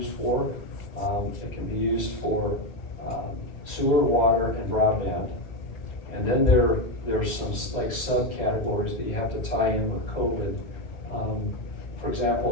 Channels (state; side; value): late; right; 2.0 ms